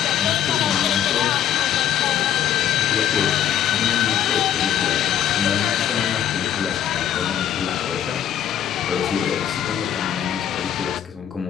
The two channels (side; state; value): right; quieter; 10.2 dB